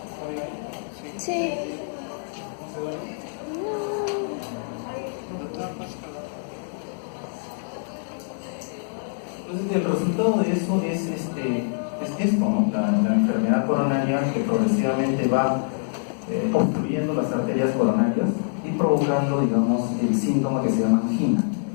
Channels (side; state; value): right; silent; digital silence